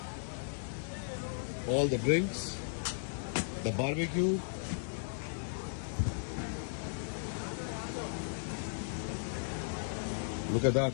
All the drinks, the barbecue. Look at that.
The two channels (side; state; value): right; silent; digital silence